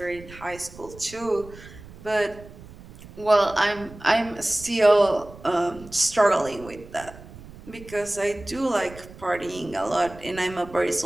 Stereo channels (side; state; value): right; noise; rumble, 18 dB below the sound